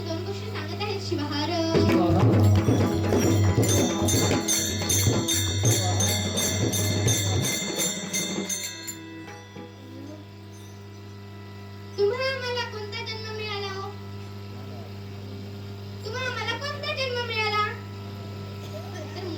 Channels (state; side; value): identical; both; correlation 1.00